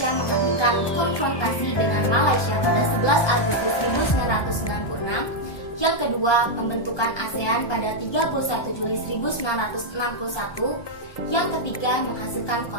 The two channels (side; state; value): right; late; 1.2 ms